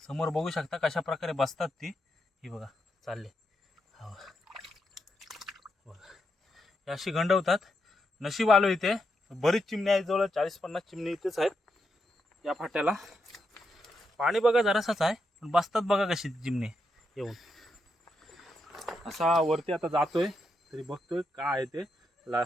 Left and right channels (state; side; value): normal; both; correlation 0.83